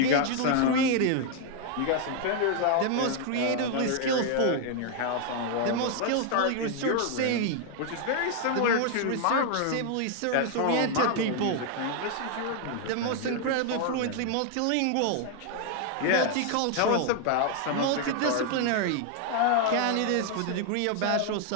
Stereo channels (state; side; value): different; both; correlation 0.00